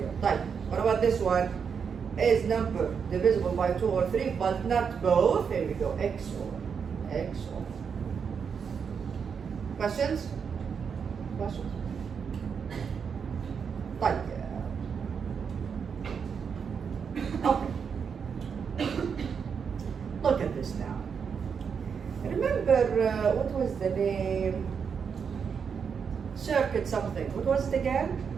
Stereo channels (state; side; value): quieter; left; 6.5 dB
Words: Right. What about this one? Is number divisible by 2 or 3, but not both? Here we go. XOR. XOR. Questions? Questions? Right. Okay. Look at this now. Remember, what was the name? Circuit something. What was it again?